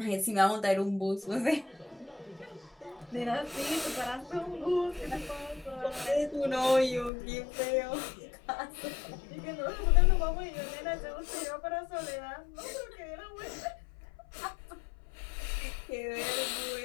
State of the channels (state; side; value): drops out; right; at 7.1 s